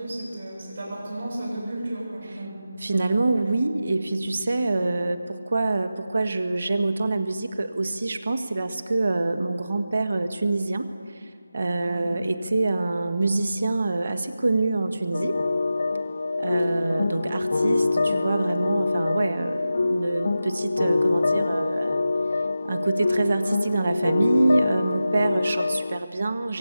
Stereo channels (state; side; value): inverted; both; correlation -0.93